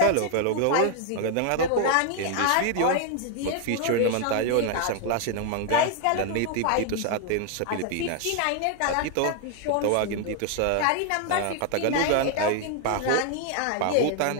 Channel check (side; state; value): both; different; correlation 0.00